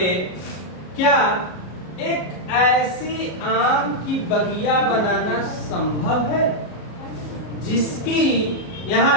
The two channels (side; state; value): right; late; 33 ms